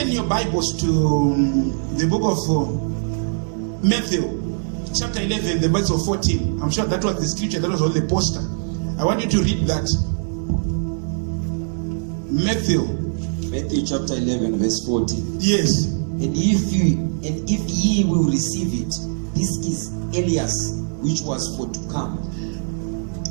your Bibles to the book of Matthew, chapter 11, the verse of 14. I'm sure that was the scripture that was on the poster. I want you to read that. Matthew chapter 11, verse 14. Yes. And if ye will receive it, this is Elias, which was for to come.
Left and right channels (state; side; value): silent; left; 64 dB below the other